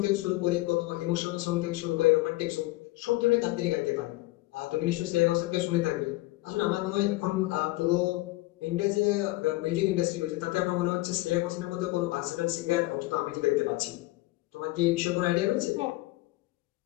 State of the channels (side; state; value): right; quieter; 19.6 dB